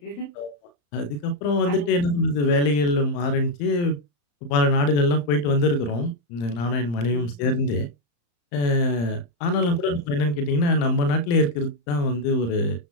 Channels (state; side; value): late; right; 34 ms